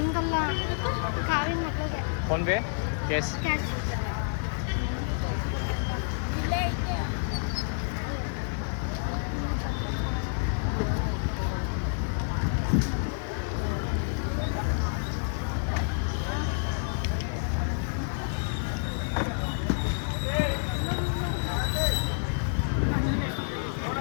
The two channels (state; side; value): silent; right; 58 dB below the other